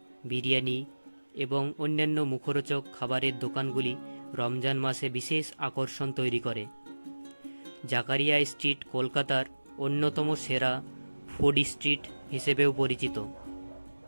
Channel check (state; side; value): inverted; both; correlation -1.00